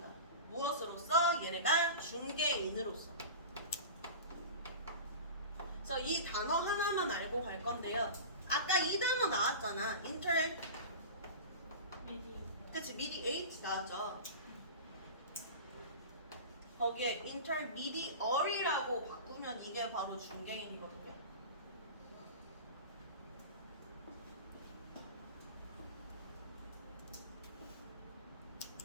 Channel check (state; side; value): inverted; both; correlation -0.32